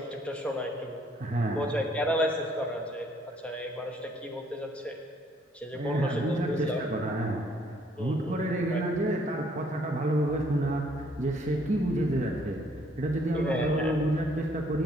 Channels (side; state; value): both; normal; correlation 0.65